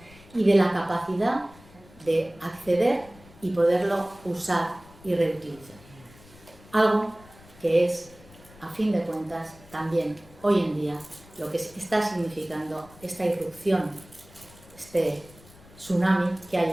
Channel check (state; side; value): noise; left; rumble, 23 dB below the sound